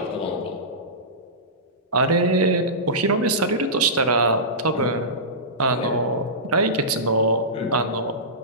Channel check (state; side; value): normal; both; correlation -0.19